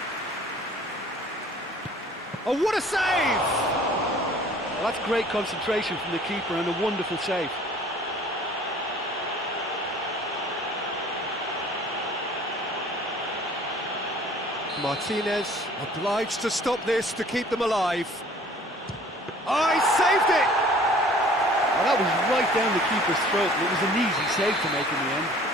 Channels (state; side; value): normal; both; correlation 0.51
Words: Oh, what a save! Well, that's great concentration from the keeper and a wonderful save. Martinez obliged to stop this to keep them alive. Oh, he saved it! Well, that was right down the keeper's throat, and it was an easy save to make in the end.